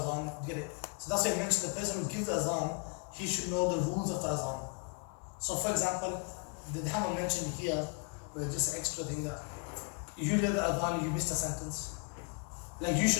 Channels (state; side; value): quieter; right; 35.4 dB